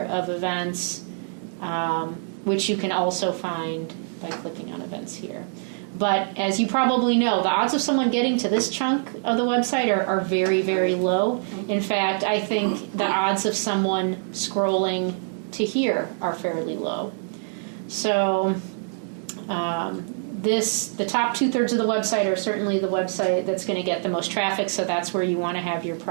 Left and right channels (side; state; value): left; silent; digital silence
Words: of events, which you can also find by clicking on events here. But as you probably know, the odds of someone getting to this chunk of the website are very, very low. In fact, I think the odds of someone scrolling to here are fairly low. So the top 2/3 of the website are certainly the website that's going to get the most traffic, so that's where you want to have your